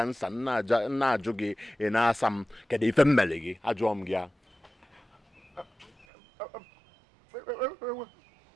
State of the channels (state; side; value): drops out; left; at 6.1 s